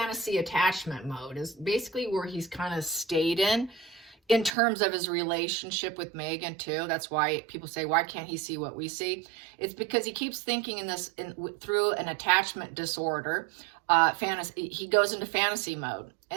attachment mode is basically where he's kind of stayed in terms of his relationship with Meghan too. That's why people say, why can't he see what we see? It's because he keeps thinking through an attachment disorder. He goes into fantasy mode.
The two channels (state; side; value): drops out; left; at 4.5 s